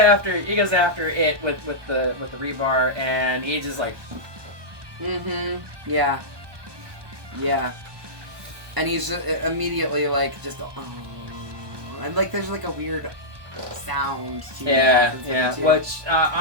it with the rebar, and he just like Yeah. And he's just immediately like and like there's like a weird sound to which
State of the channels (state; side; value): late; left; 1.2 ms